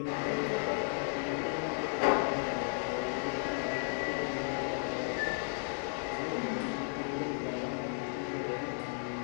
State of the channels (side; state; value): right; silent; 55 dB below the other